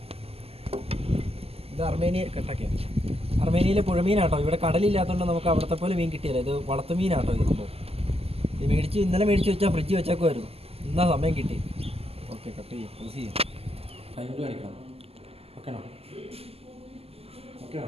ഇത് അർമേനിയയിലെ പുഴമീനാട്ടോ. ഇവിടെ കടലില്ലാത്തതുകൊണ്ട് നമുക്ക് അവിടുത്തെ പോലെ മീൻ കിട്ടിയല്ല. ഇത് വളർത്തുമീനാട്ടോ. ഇത് ഇന്നലെ മേടിച്ച് വെച്ചാൽ ഫ്രിഡ്ജ് വെച്ചേക്കുമായിരുന്നു. ഇന്നാ സമയം കിട്ടി. ഓക്കെ, കട്ട് ചെയ്യാം. യൂസ് ചെയ്യാം. കൈകൊണ്ട് കാണിക്കണം. ഓക്കെയാണോ?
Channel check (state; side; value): late; left; 0.29 ms